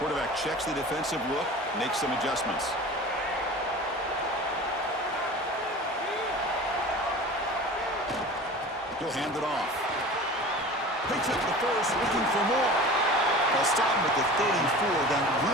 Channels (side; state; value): both; normal; correlation 0.37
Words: checks the defensive look, makes some adjustments. He'll hand it off. Picks up the first, looking for more. They'll stop him at the 34. That